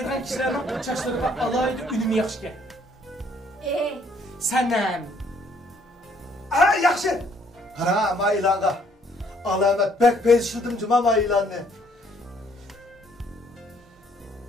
kishilarning chashlariga alohida unumi yaxshi. Sanam. Yaxshi. Qara, men e'longa. Alamat bek belshildim juma men e'lonni.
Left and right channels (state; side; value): normal; both; correlation 0.64